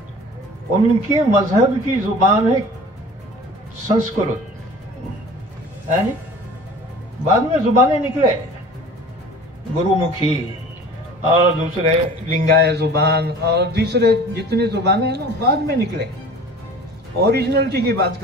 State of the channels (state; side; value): normal; both; correlation 0.43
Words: उनके मजहब की जुबान है संस्कृत। है नी? बाद में जुबानें निकले, गुरुमुखी और दूसरे लिंगायत जुबान और दूसरे जितनी जुबानें हैं ना, बाद में निकले। ओरिजिनलिटी की बात